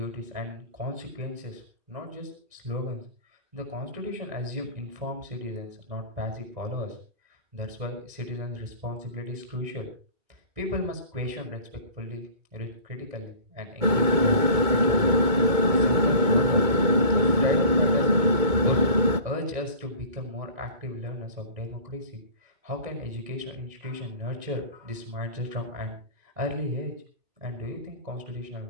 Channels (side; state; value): left; late; 2.2 ms